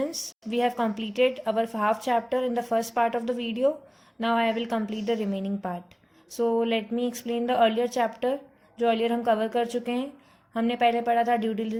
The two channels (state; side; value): identical; both; correlation 1.00